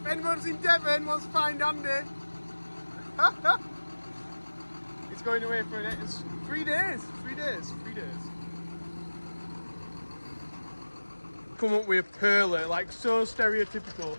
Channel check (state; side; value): inverted; both; correlation -1.00